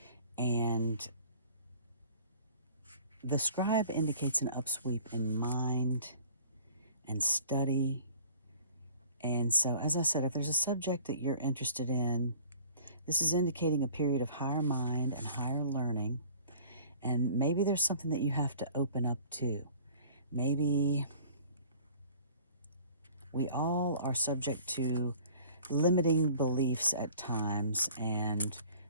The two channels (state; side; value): inverted; both; correlation -0.49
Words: And the Scribe indicates an upsweep in mind and study. And so, as I said, if there's a subject that you're interested in, this is indicating a period of higher mind and higher learning. And maybe there's something that you have to open up to. Maybe we all are subject to limiting beliefs at times, and